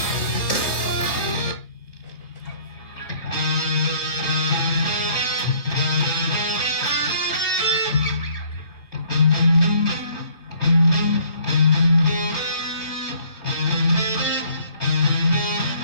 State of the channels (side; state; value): right; late; 3.0 ms